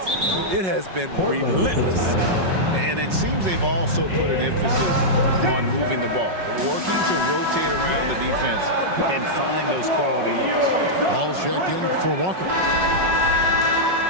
it has been relentless. And it seems they've also put an emphasis on moving the ball, working to rotate around the defense and find those quality looks. Ball checked in for Walker.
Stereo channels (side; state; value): left; late; 5.4 ms